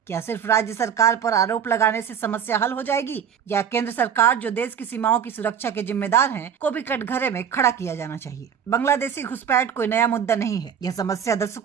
क्या सिर्फ राज्य सरकार पर आरोप लगाने से समस्या हल हो जाएगी, या केंद्र सरकार जो देश की सीमाओं की सुरक्षा के जिम्मेदार है को भी कटघरे में खड़ा किया जाना चाहिए? बांग्लादेशी घुसपैठ कोई नया मुद्दा नहीं है। यह समस्या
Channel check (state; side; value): quieter; left; 8.1 dB